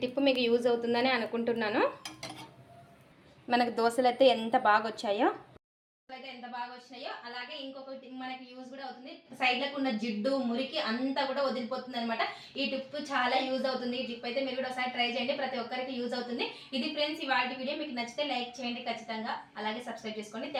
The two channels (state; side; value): identical; both; correlation 1.00